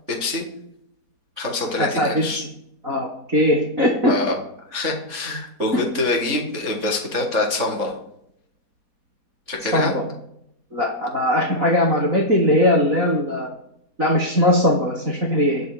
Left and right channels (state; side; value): late; left; 4.2 ms